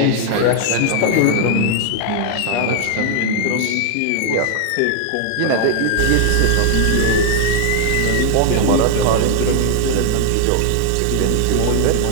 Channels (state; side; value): different; both; correlation 0.00